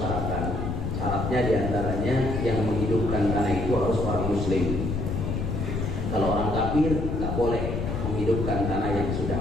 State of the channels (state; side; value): noise; left; rumble, 2 dB below the sound